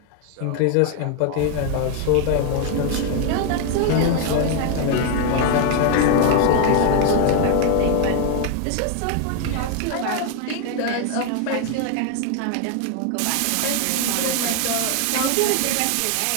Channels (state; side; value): different; both; correlation 0.01